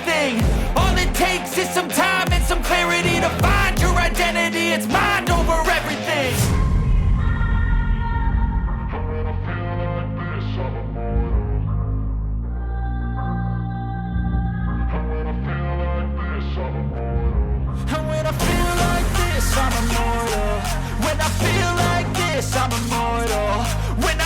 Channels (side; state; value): both; identical; correlation 1.00